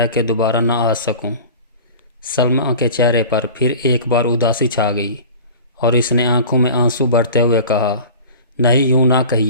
کہ دوبارہ نہ آ سکوں۔ سلمہ کے چہرے پر پھر ایک بار اداسی چھا گئی، اور اس نے آنکھوں میں آنسو بھرتے ہوئے کہا، نہیں، یوں نہ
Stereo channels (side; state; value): both; inverted; correlation -0.39